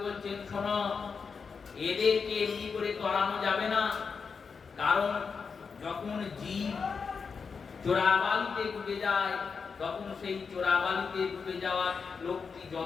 বলছেন, শোনো, এদেরকে এমনি করে তরানো যাবে না। কারণ যখন জীব চোরাবালিতে ডুবে যায়, তখন সেই চোরাবালিতে ডুবে যাওয়া লোকটি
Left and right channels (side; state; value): right; quieter; 5.5 dB